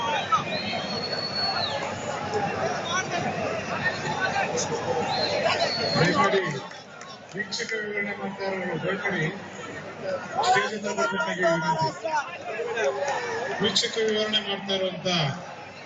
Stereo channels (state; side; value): identical; both; correlation 1.00